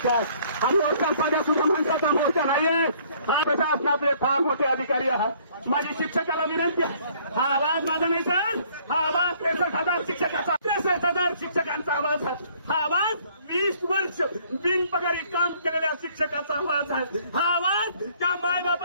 हा मोर्चा साध्या सुद्धा माणसाचा मोर्चा नाहीये, हा प्रशासनातले फार मोठे अधिकारी आहात। माझी शिक्षकाला विनंती आहे, हा आवाज माझा नाही सर, हा आवाज 63,000 शिक्षकाचा, 63,000 शिक्षकांचा आवाज आहे, हा आवाज 20 वर्ष बिनपगारी काम केलेल्या शिक्षकाचा आवाज आहे, हा आवाज त्या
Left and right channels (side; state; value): both; inverted; correlation -0.60